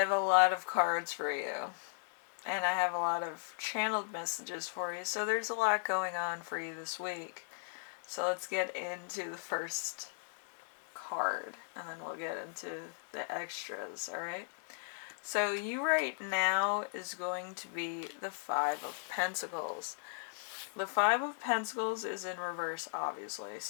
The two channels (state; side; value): silent; right; digital silence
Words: a lot of cards for you, and I have a lot of channeled messages for you, so there's a lot going on for you this week. So let's get into the first card, and then we'll get into the extras, alright? So you right now is going to be the Five of Pentacles. The Five of Pentacles is in reverse, obviously.